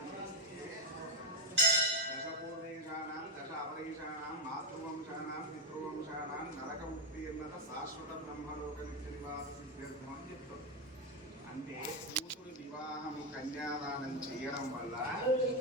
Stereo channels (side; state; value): both; normal; correlation 0.07